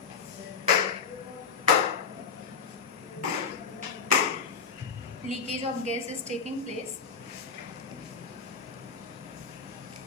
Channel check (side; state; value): right; quieter; 5.8 dB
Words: Leakage of gas is taking place.